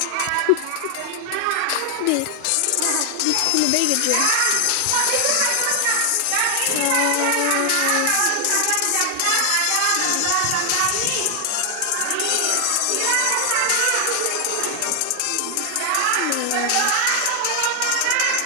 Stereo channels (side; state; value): both; different; correlation 0.00